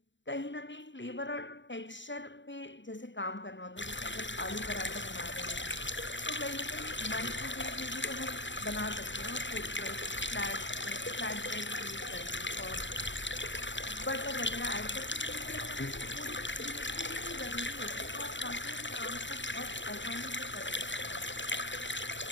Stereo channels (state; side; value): late; right; 0.54 ms